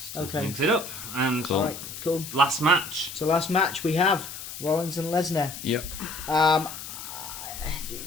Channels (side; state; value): left; noise; hiss, 10 dB below the sound